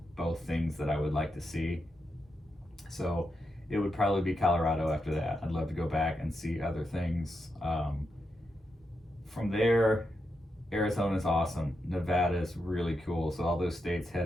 both things that I would like to see. So it would probably be Colorado after that. I'd love to go back and see other things. From there, Arizona's awesome. Nevada's really cool. So all those states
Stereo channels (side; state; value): both; normal; correlation 0.85